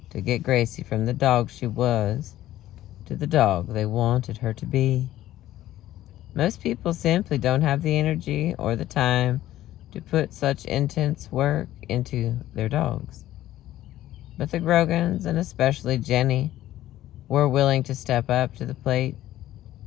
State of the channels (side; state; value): right; quieter; 14.0 dB